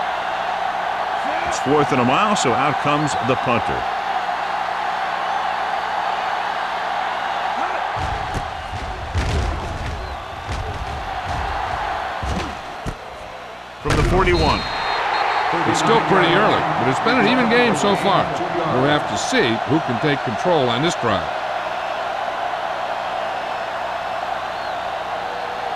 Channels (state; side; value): identical; both; correlation 1.00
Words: It's 4th and a mile, so out comes the punter. From the 41. It's still pretty early, but it's been an even game so far. We'll have to see who can take control on this drive.